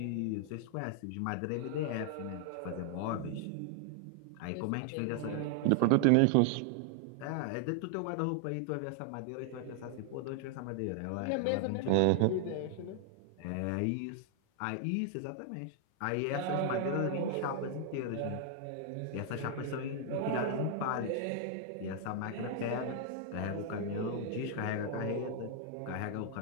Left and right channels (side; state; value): both; different; correlation 0.00